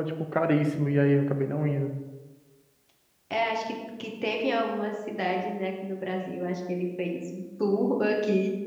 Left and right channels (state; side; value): identical; both; correlation 1.00